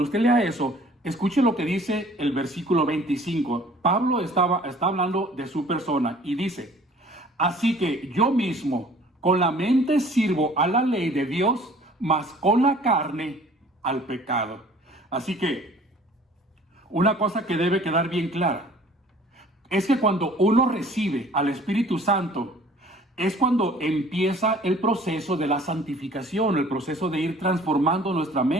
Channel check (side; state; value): both; normal; correlation 0.52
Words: usted lea eso, escuche lo que dice el versículo 25. Pablo está hablando de su persona y dice, así que yo mismo con la mente sirvo a la ley de Dios, mas con la carne al pecado. Así que una cosa que debe quedar bien clara es que cuando uno recibe al Espíritu Santo, es cuando empieza el proceso de la santificación, el proceso de ir transformando nuestra